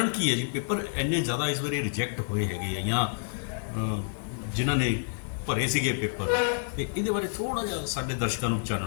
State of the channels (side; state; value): right; silent; digital silence